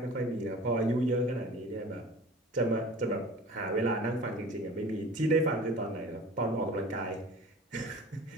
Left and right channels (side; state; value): both; normal; correlation 0.41